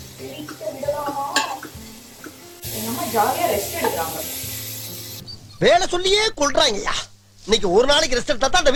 ஜாலியா ரெஸ்ட் எடுக்கிறாங்க. வேலை சொல்லியே கொள்றாங்கய்யா. இன்னைக்கு ஒரு நாளைக்கு ரெஸ்ட் எடுத்தா தான் அந்த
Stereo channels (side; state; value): both; identical; correlation 1.00